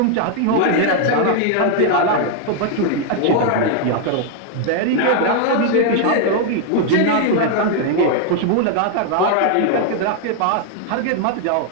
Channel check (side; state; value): both; different; correlation 0.00